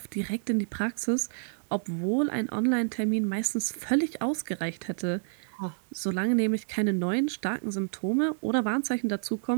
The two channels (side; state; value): left; silent; digital silence